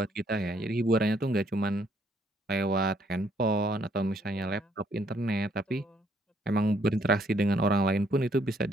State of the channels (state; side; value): normal; both; correlation 0.68